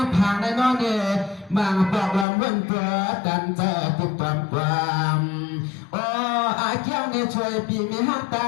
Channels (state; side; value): drops out; right; at 2.2 s